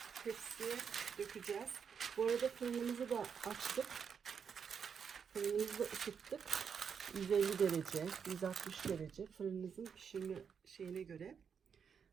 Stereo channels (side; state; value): left; quieter; 6.8 dB